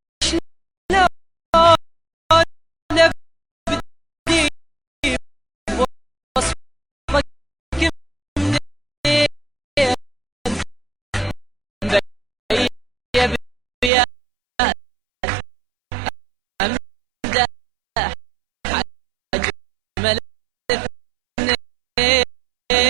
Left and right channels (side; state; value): left; drops out; at 13.9 s